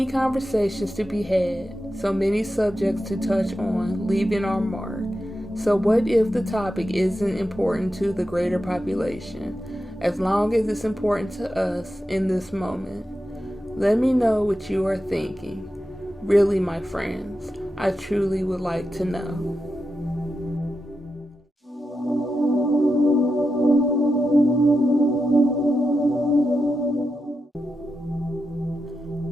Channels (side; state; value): both; normal; correlation 0.89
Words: conversations to be had, so many subjects to touch on, leaving our mark. So what if the topic isn't important to the greater population, as long as it's important to us in this moment? Let me know what you are thinking. Really, my friends, I truly would like to know.